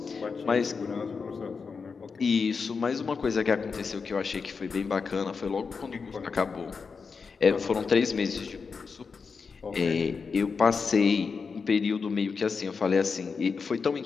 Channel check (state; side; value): quieter; right; 5.2 dB